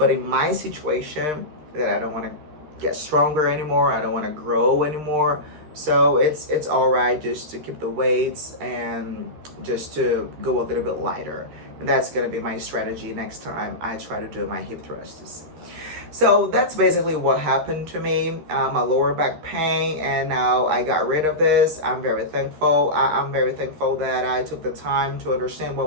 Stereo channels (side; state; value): left; late; 13 ms